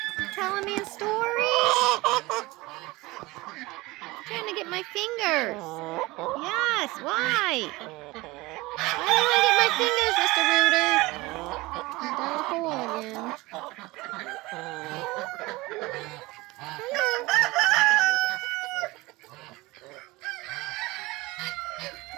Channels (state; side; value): quieter; left; 21.4 dB